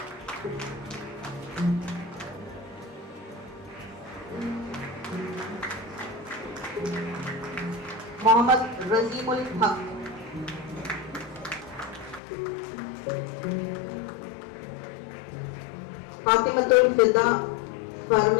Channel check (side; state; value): right; drops out; at 12.2 s